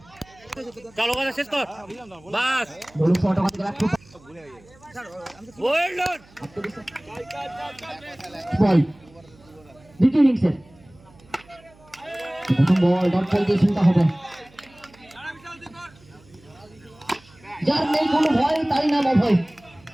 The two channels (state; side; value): noise; right; hum, 27 dB below the sound